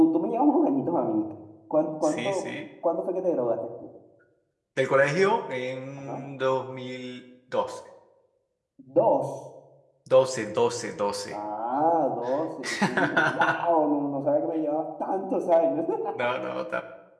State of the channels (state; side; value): identical; both; correlation 1.00